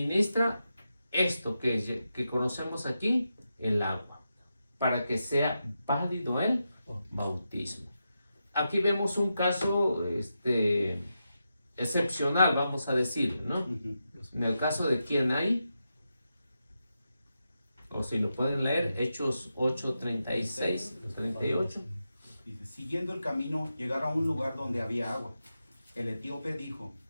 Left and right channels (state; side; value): inverted; both; correlation -0.88